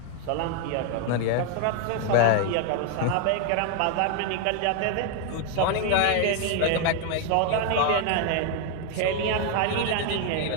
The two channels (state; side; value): different; both; correlation 0.00